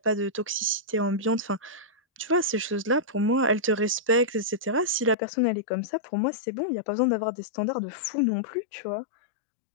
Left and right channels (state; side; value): drops out; right; at 5.2 s